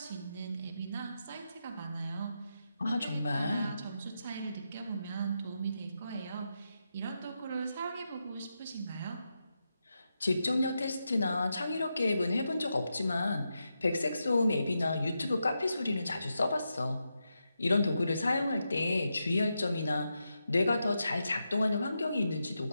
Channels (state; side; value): inverted; both; correlation -0.86